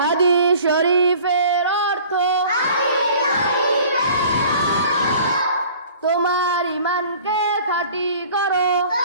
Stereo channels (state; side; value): inverted; both; correlation -0.48